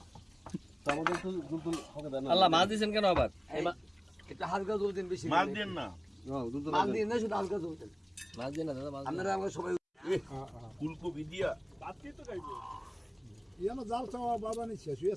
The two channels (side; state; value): both; identical; correlation 1.00